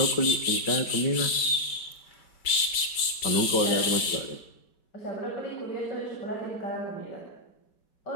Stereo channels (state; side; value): late; right; 5.1 ms